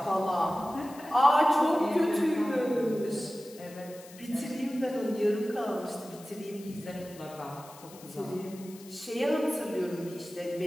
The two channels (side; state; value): left; noise; hiss, 20 dB below the sound